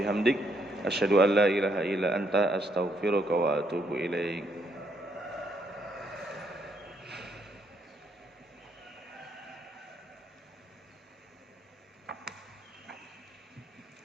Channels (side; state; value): both; normal; correlation 0.73